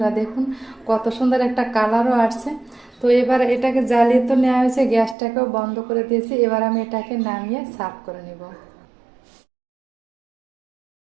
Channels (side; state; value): left; drops out; at 5.2 s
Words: দেখুন কত সুন্দর একটা কালারও আসছে। তো এবার এটাকে জ্বালিয়ে তো নেওয়া হয়েছে, গ্যাসটাকেও বন্ধ করে দিয়েছি, এবার আমি এটাকে নামিয়ে সার্ভ করে নিব।